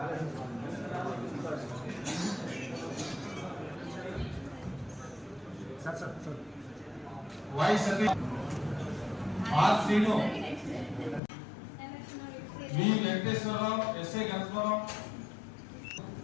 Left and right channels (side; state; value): right; drops out; at 11.2 s